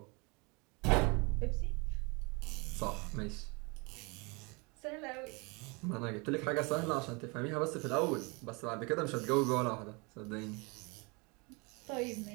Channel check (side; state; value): left; quieter; 29.1 dB